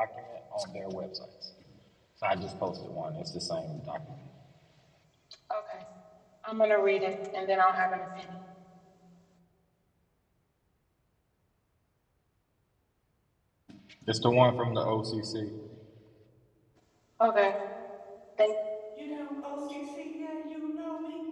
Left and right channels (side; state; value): both; identical; correlation 1.00